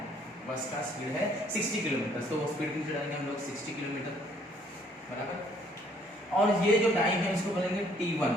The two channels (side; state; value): both; normal; correlation 0.63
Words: बस का स्पीड है 60 किलोमीटर, तो वो स्पीड नीचे डालेंगे हम लोग 60 किलोमीटर बराबर। और ये जो टाइम है इसको बोलेंगे